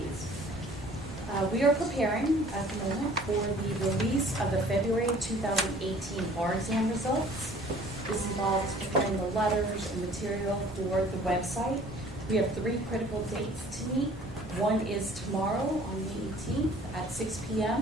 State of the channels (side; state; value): both; normal; correlation 0.52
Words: We are preparing at the moment for the release of the February 2018 bar exam results. This involves preparing the letters and material for the website. We have 3 critical dates to meet. One is tomorrow on the 18th at 6